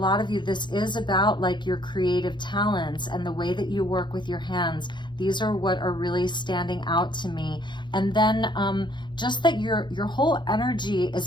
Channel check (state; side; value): late; right; 0.22 ms